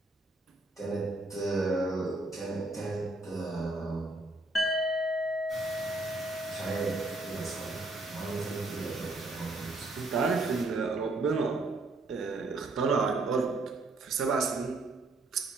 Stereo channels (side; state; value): left; quieter; 3.0 dB